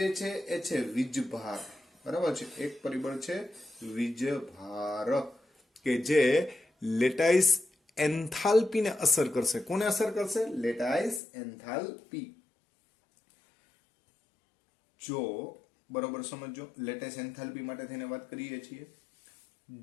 છે એ છે વીજભાર, બરાબર છે. એક પરિબળ છે વીજભાર કે જે લેટાઇસ એન્થાલ્પીને અસર કરશે. કોને અસર કરશે? Lattice enthalpy. જો બરોબર સમજો, લેટાઇસ એન્થાલ્પી માટે થઈને વાત કરીએ છીએ.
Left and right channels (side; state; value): right; drops out; at 11.2 s